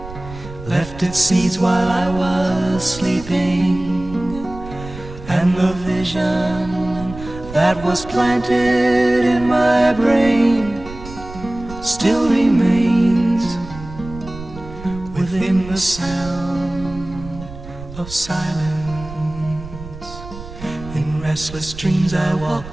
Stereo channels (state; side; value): noise; right; rumble, 14 dB below the sound